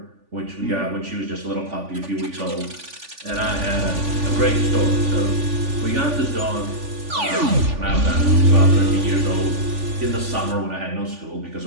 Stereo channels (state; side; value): late; left; 3.5 ms